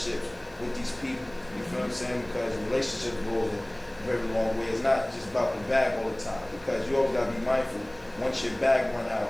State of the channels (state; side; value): noise; right; hiss, 30 dB below the sound